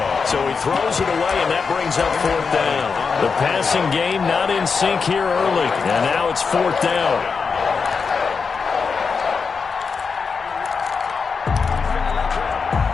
So he throws it away, and that brings up 4th down. The passing game not in sync here early. And now it's 4th down.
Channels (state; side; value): quieter; right; 5.3 dB